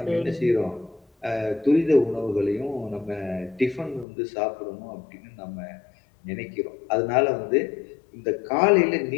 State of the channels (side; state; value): right; drops out; at 4.0 s